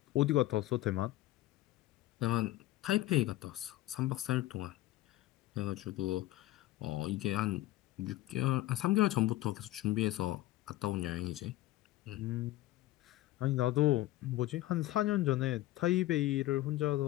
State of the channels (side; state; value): right; quieter; 16.2 dB